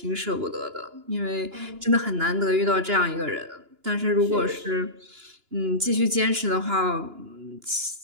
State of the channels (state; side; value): late; left; 2.9 ms